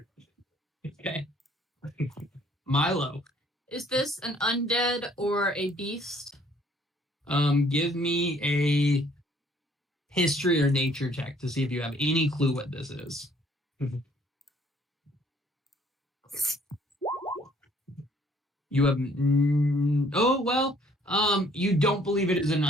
Okay. Milo, Is this an undead or a beast? give me a history or nature check to see if you have any clue what this is. You have you don't believe it is an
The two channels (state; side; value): normal; both; correlation 0.61